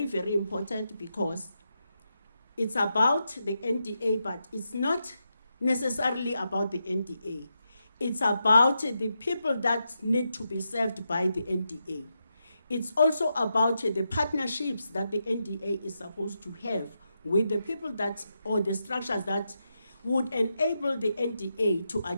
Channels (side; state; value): both; inverted; correlation -0.85